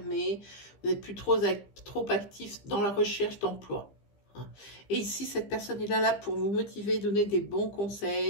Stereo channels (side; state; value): right; late; 15 ms